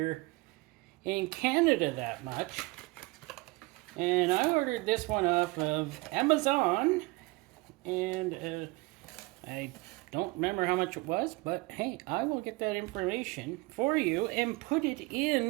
in Canada that much. And I ordered this one off of Amazon, and I don't remember how much it was, but hey, I will get that information for you and put it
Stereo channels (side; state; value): left; quieter; 23.6 dB